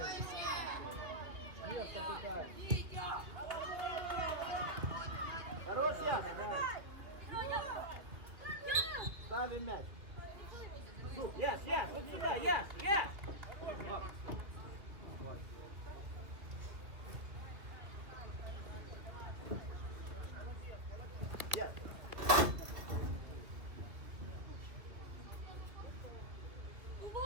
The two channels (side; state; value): left; late; 2.1 ms